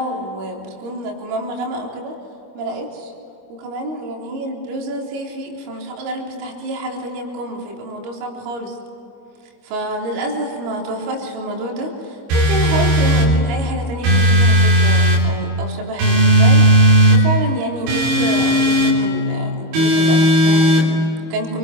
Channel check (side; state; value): left; late; 25 ms